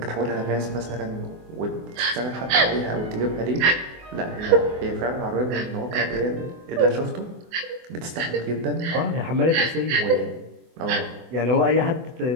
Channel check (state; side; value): late; left; 24 ms